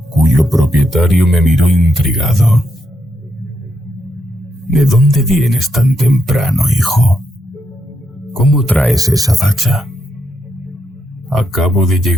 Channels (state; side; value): normal; both; correlation 0.80